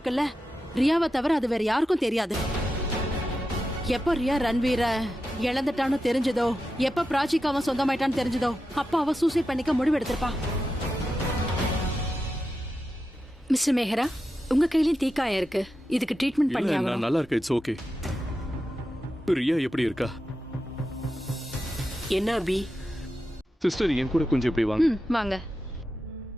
ரியாவை தவிர அது வேற யாருக்கும் தெரியாது. எப்ப ரியா ரன்வீர இழந்துட்டான்னு தெரிஞ்சதோ, எப்ப பிராச்சிக்கு அவன் சொந்தமாயிட்டான்னு தெரிஞ்சதோ, அப்ப அவ சூசைட் பண்ணிக்க முடிவு எடுத்திருப்பா. மிஸ்டர் மேஹரா, உங்க கையிலயும் தீக்காயம் இருக்கு. இதுக்கு ட்ரீட்மெண்ட் பண்ணி ஆகணும். நான் நல்லா இருக்கேன். It's okay. ரியா எப்படி இருக்கா? என்ன அபி? சிஸ்டர் என் கூட கொஞ்சம் இப்படி வாங்க. வாங்க.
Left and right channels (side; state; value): both; normal; correlation 0.90